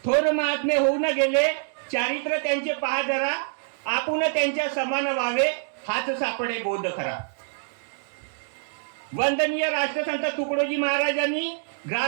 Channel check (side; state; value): left; silent; digital silence